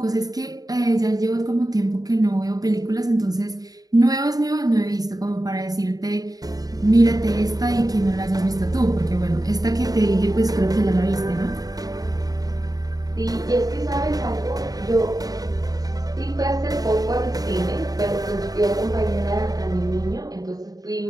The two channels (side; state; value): left; late; 0.18 ms